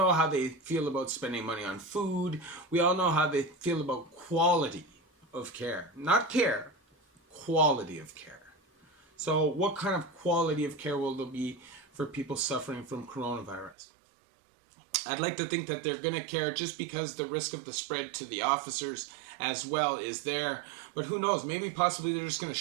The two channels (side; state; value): left; drops out; at 13.8 s